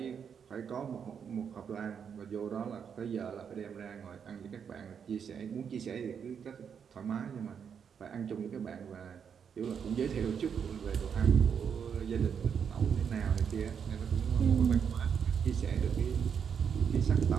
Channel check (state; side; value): quieter; left; 7.3 dB